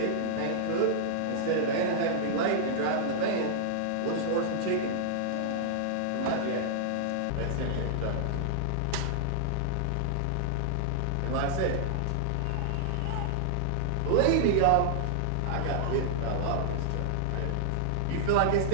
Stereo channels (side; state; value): both; different; correlation -0.01